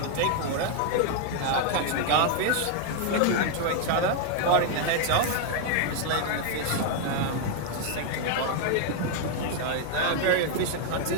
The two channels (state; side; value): different; both; correlation 0.00